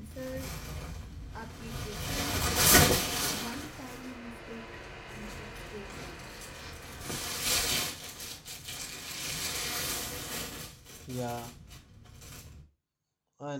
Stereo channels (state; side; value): identical; both; correlation 1.00